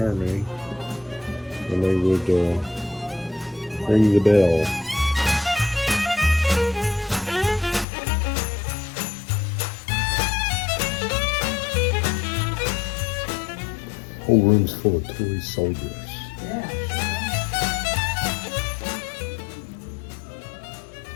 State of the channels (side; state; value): right; drops out; at 7.9 s